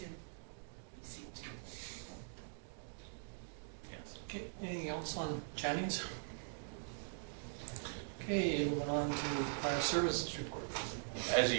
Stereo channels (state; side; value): silent; left; digital silence